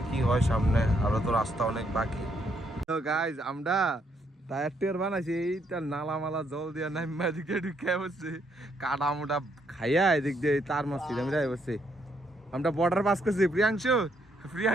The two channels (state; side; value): normal; both; correlation 0.73